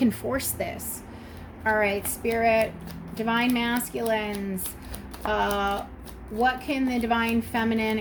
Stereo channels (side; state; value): both; identical; correlation 1.00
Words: force this. All right, Spirit, Divine Masculines, what can the Divine Feminine